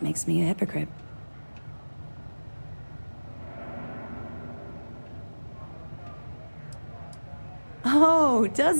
makes me a hypocrite. Oh,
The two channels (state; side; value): inverted; both; correlation -1.00